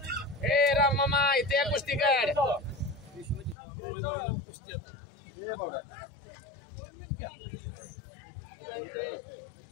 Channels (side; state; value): right; drops out; at 3.6 s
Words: राम मामा इथे कुस्ती कर.